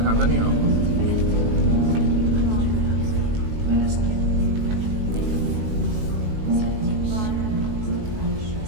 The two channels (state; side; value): late; left; 19 ms